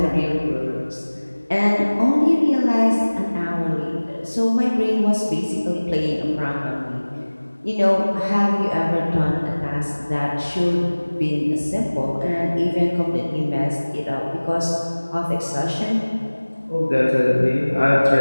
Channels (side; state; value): both; inverted; correlation -1.00